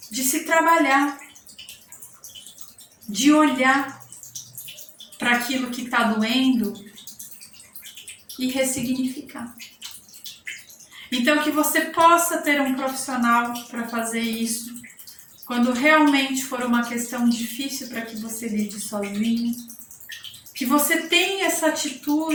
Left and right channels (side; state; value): both; identical; correlation 1.00